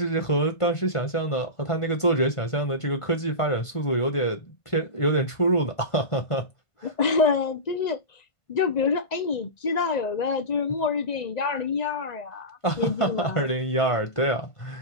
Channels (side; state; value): right; late; 1.5 ms